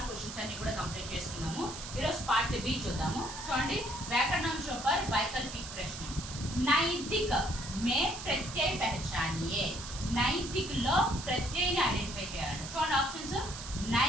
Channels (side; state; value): right; noise; hiss, 10 dB below the sound